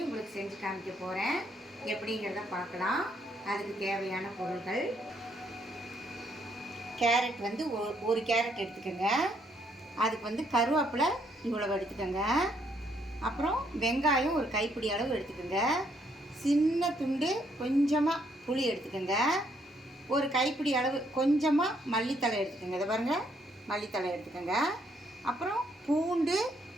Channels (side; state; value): both; normal; correlation 0.71